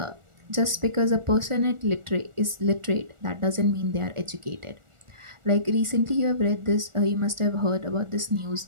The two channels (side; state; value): left; late; 1.4 ms